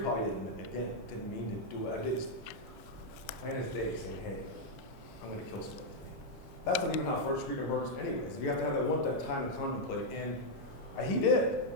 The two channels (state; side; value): late; right; 3.9 ms